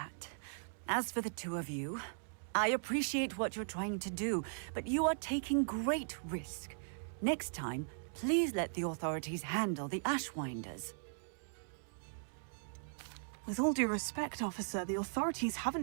As for the two of you, I appreciate what you're trying to do, but you are taking great risk. Next time, please let the authorities handle the Ashwinders. With all due respect, officer, the authorities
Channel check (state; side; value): silent; left; digital silence